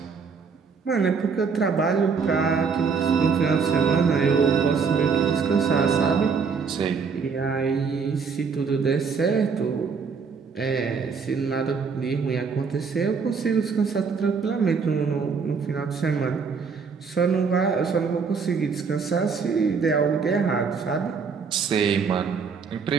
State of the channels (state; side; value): quieter; left; 5.5 dB